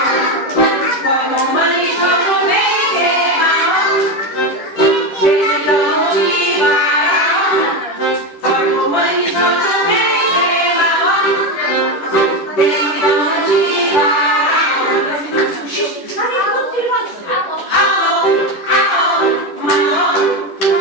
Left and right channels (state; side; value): late; right; 10 ms